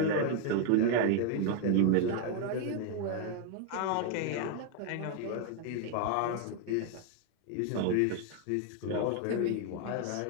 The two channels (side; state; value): both; different; correlation 0.00